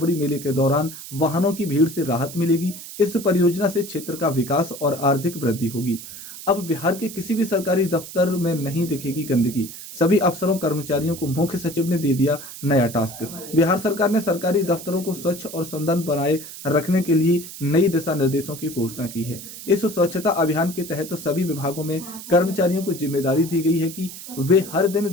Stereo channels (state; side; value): noise; right; hiss, 13 dB below the sound